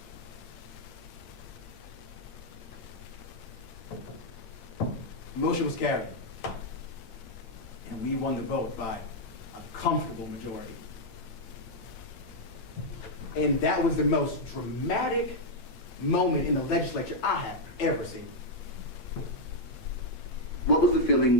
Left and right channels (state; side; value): late; right; 8.7 ms